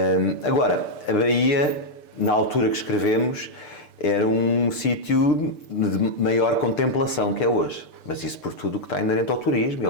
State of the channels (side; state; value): right; late; 6.7 ms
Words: Agora, a Baía, na altura que escrevemos, era um sítio de maior contemplação que é hoje. Mas isso por tudo o que está inerente ao turismo e